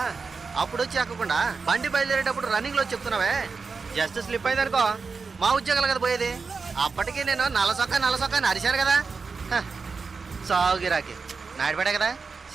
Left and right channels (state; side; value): quieter; left; 4.7 dB